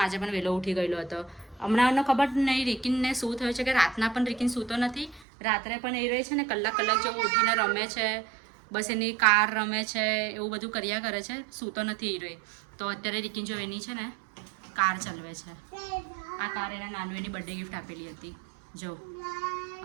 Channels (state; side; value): drops out; left; at 5.2 s